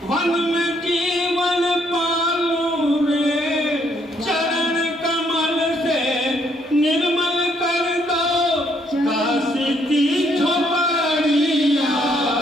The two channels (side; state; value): both; normal; correlation 0.70